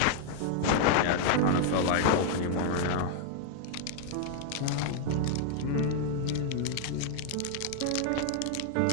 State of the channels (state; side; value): different; both; correlation 0.00